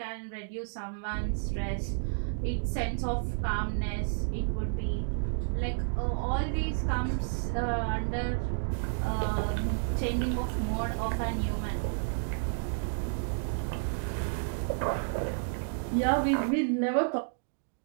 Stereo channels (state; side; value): silent; left; digital silence